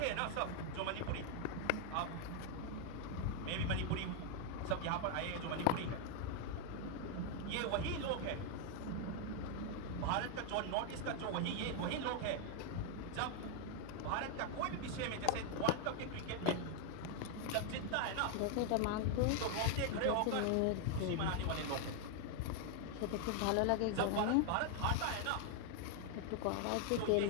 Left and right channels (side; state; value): both; different; correlation 0.00